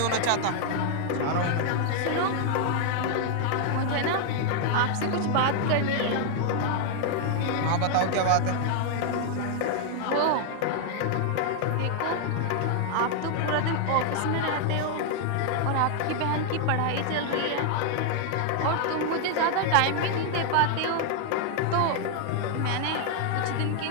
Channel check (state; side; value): different; both; correlation 0.00